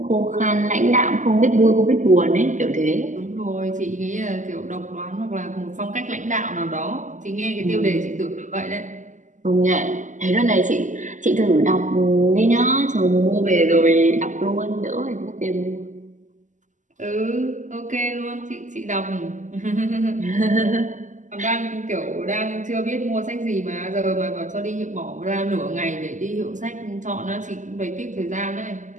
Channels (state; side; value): late; left; 0.37 ms